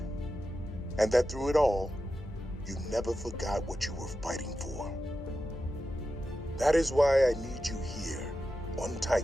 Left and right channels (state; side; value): normal; both; correlation 0.90